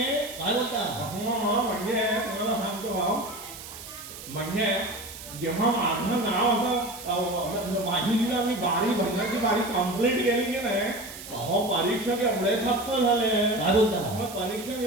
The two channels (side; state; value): right; noise; hiss, 13 dB below the sound